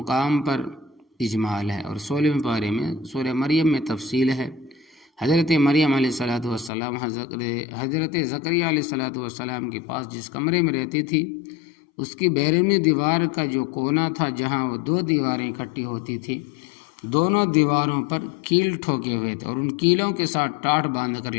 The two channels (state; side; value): drops out; right; at 6.7 s